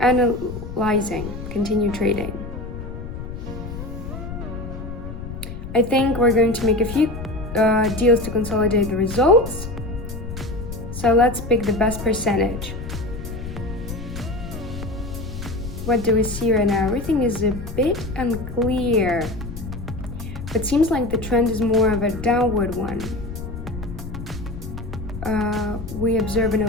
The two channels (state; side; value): noise; left; rumble, 9 dB below the sound